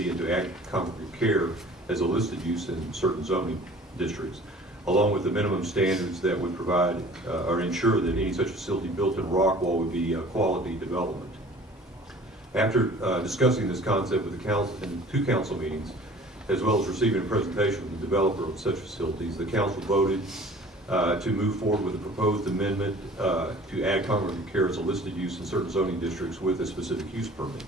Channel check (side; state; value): both; normal; correlation 0.48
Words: and to add congregate care as a listed use in certain zoning districts, along with the minimum standards that would provide or ensure that any such facility built in Rockwall would be a quality development. After discussing this concept with the council in 2 council meetings, as well as receiving a presentation from the developer of such facilities, the council voted to move forward with a proposed amendment to add congregate care as a listed use in certain zoning districts with a specific use permit.